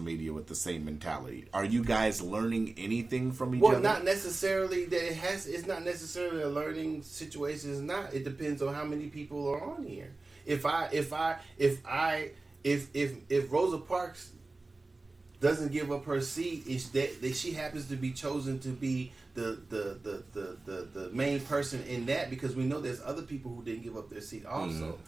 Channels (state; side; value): quieter; left; 3.3 dB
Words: with the same mentality. Are you guys learning anything from each other? Well, not necessarily that it's not necessarily a learning situation. It's not. It depends on how many people are on here. If Rosa Parks doesn't give up her seat, is that she happens to be chosen to be the main person in that, because we know there's other people who didn't give up their seat also.